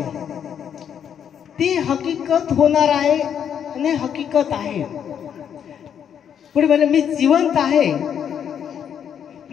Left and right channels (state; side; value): quieter; right; 8.5 dB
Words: ती हकीकत होणार आहे आणि हकीकत आहे. पुढे म्हणे, मी जिवंत आहे